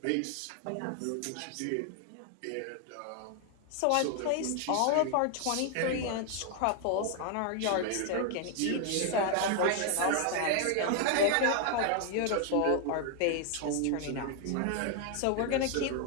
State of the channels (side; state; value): both; different; correlation 0.00